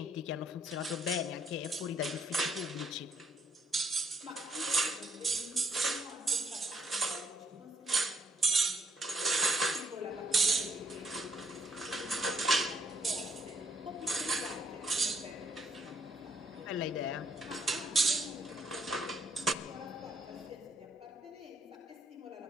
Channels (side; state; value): both; normal; correlation 0.69